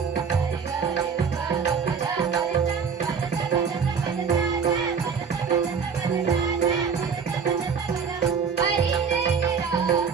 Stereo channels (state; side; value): quieter; left; 6.1 dB